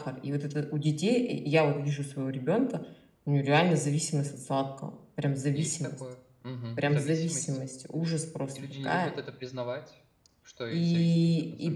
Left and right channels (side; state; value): both; identical; correlation 1.00